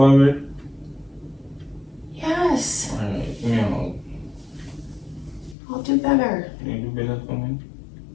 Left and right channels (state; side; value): drops out; right; at 5.6 s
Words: Yes. Alright, yeah. I'll do better. You do better for me?